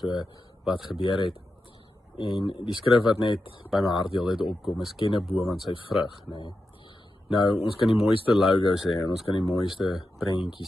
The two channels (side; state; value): both; normal; correlation 0.89